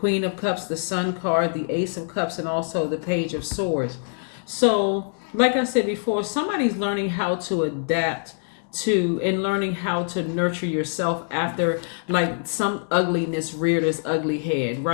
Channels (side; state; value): right; silent; digital silence